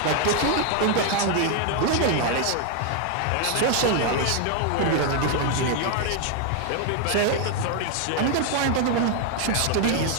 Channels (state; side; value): different; both; correlation 0.01